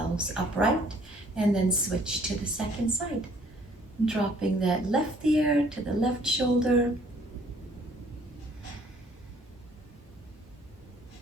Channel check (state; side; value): normal; both; correlation 0.59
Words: upright, and then switch to the second side. Dropping that left ear to the left shoulder.